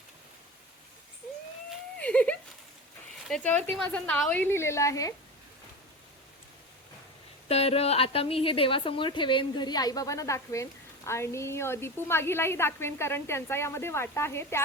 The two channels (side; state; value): both; normal; correlation 0.27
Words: त्याच्यावरती माझं नावही लिहिलेलं आहे. तर आता मी हे देवासमोर ठेवेन, घरी आईबाबांना दाखवेन आणि दीपू मागीलाही दाखवेन, कारण त्यांचा यामध्ये वाटा आहे.